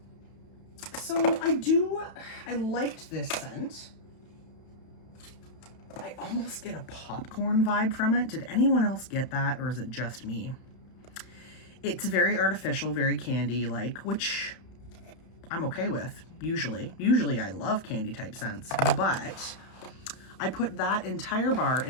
So I liked this scent. I almost get a popcorn vibe from it. Did anyone else get that, or is it just me? It's very artificial, very candy-like, which I'm okay with, usually. Usually I love candy type scents, but I put that entire bar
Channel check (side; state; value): right; late; 31 ms